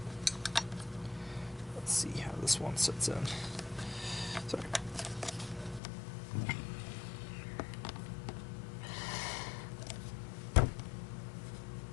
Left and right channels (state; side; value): drops out; right; at 5.8 s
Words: let's see how this one sits in. Sorry.